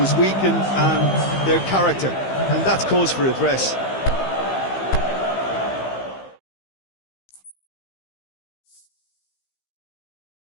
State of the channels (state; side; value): late; right; 15 ms